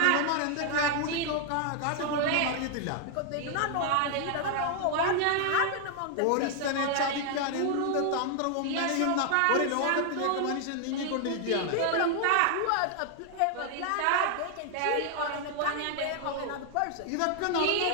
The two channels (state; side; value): different; both; correlation 0.00